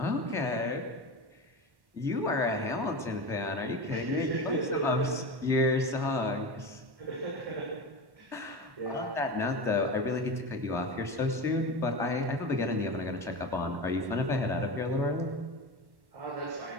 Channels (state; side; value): late; left; 1.1 ms